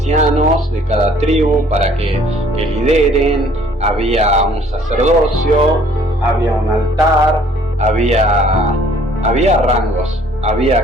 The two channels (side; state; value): both; normal; correlation 0.57